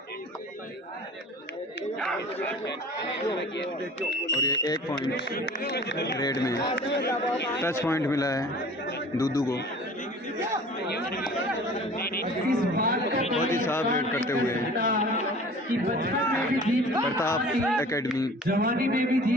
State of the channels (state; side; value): normal; both; correlation 0.44